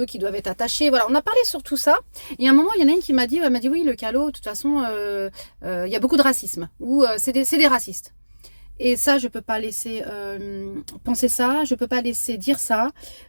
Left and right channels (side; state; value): both; inverted; correlation -1.00